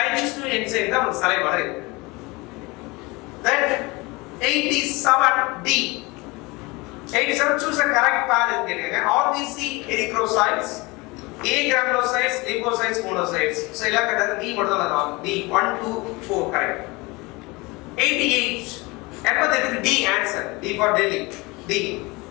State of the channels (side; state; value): right; quieter; 24.5 dB